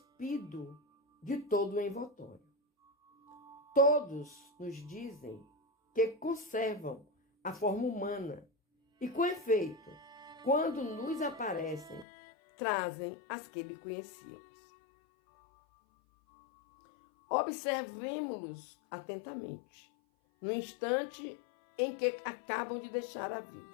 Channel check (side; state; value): right; drops out; at 12.1 s